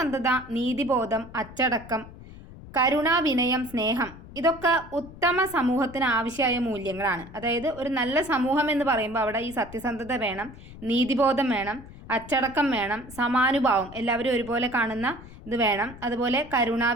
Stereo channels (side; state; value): left; noise; rumble, 17 dB below the sound